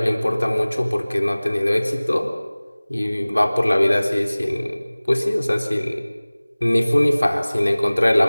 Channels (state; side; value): inverted; both; correlation -0.99